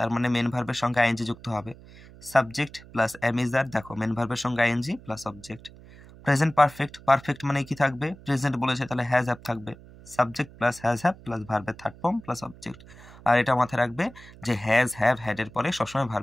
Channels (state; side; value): noise; right; hum, 20 dB below the sound